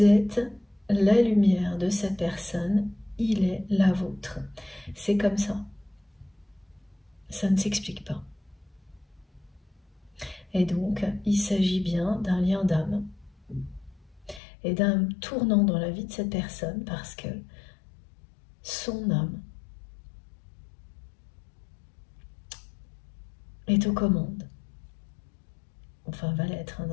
êtes la lumière de cette personne, il est la vôtre. C'est comme ça. Ça ne s'explique pas. Et donc, il s'agit bien d'un lien d'âme et d'un tournant dans la vie de cette personne parce que son âme est aux commandes. Enfin, va l'être.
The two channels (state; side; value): drops out; right; at 14.4 s